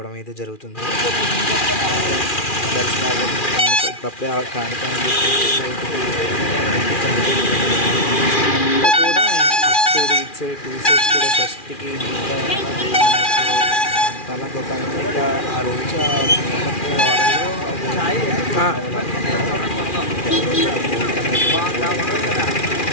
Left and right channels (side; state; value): right; late; 2.4 ms